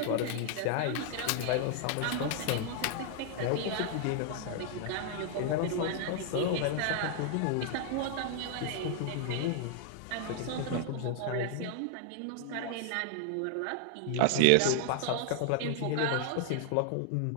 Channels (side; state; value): both; different; correlation 0.00